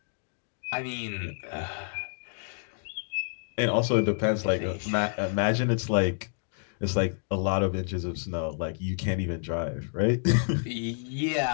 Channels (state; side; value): silent; right; digital silence